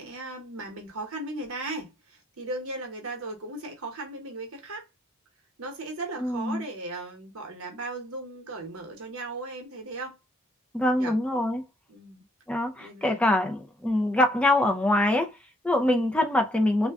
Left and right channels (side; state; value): both; normal; correlation 0.69